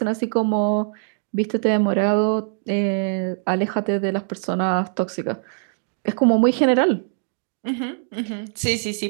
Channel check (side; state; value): left; silent; digital silence